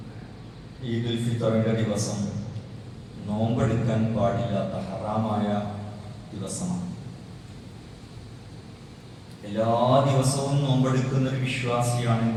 ഈദുൽ ഫിത്തറിൻ്റെ ദിവസം നോമ്പെടുക്കാൻ പാടില്ലാത്ത ഹറാമായ ദിവസമാണ്. എല്ലാ ദിവസവും നോമ്പെടുക്കുന്ന ഒരു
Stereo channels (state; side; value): identical; both; correlation 1.00